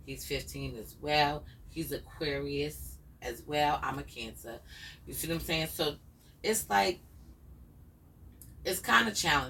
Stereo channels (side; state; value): both; identical; correlation 1.00